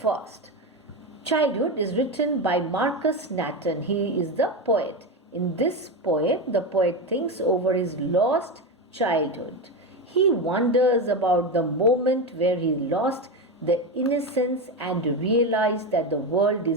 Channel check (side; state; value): both; normal; correlation 0.16